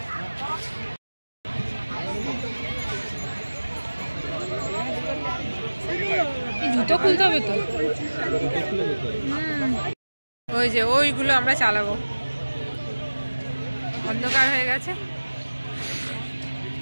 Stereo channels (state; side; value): inverted; both; correlation -1.00